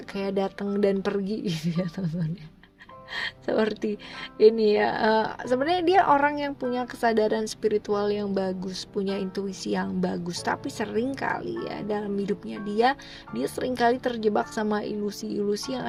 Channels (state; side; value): identical; both; correlation 1.00